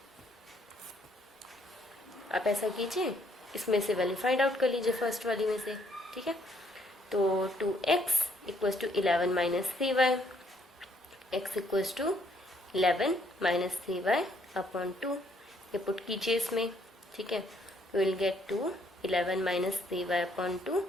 आप ऐसा कीजिए, इसमें से वैल्यू फाइंड आउट कर लीजिए फर्स्ट वाली में से, ठीक है। तो 2x equals to 11 minus 3y, x equals to 11 minus 3y upon 2, ये पुट कीजिए इसमें, ठीक है। Will get two 11 minus 3y upon 2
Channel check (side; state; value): both; normal; correlation 0.68